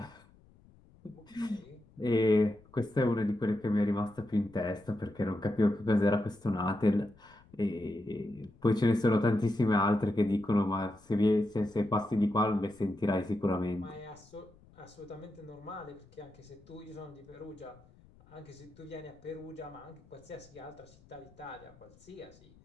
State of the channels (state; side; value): noise; left; rumble, 27 dB below the sound